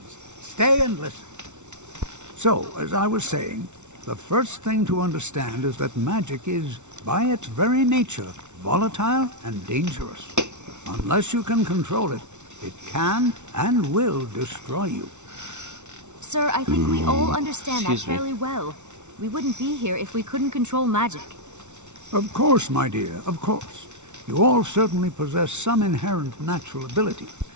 stay and listen. So, as I was saying, the first thing to understand is that magic is, by its very nature, volatile and dangerous. Unless you can control it, it can and will destroy you. Sir, I think we all understand that Excuse me. fairly well. We wouldn't be here if we couldn't control magic. Of course, my dear, of course. You all certainly possess some inherent natural ability.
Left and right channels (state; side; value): late; left; 0.83 ms